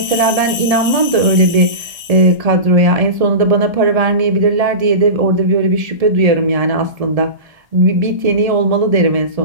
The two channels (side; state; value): left; late; 1.7 ms